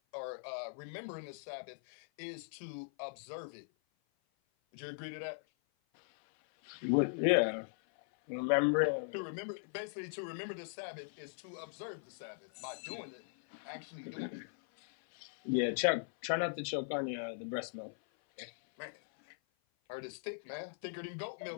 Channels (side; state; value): right; silent; 52 dB below the other